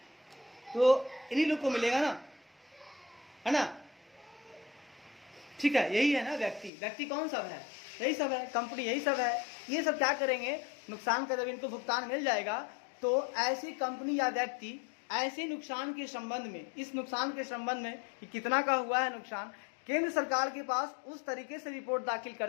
तो इन्हीं लोग को मिलेगा ना, है ना। ठीक है, यही है ना व्यक्ति कौन सब है, यही सब है, कंपनी यही सब है। ये सब क्या करेंगे, नुकसान का जब इनको भुगतान मिल जाएगा तो ऐसी कंपनी या व्यक्ति ऐसे नुकसान के संबंध में, इस नुकसान के संबंध में कि कितना का हुआ है नुकसान, केंद्र सरकार के पास उस तरीके से रिपोर्ट दाखिल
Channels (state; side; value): drops out; right; at 6.7 s